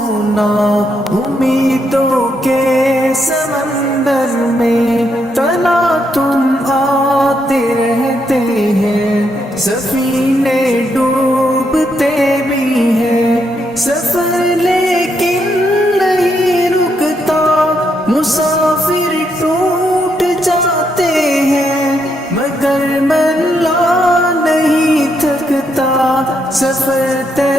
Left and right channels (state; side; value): normal; both; correlation 0.78